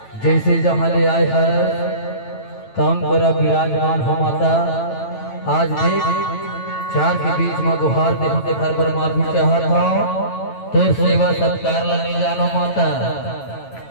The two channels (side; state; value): right; late; 9.0 ms